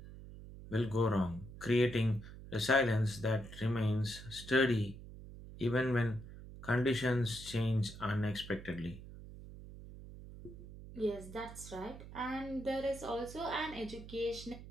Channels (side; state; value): right; noise; hum, 14 dB below the sound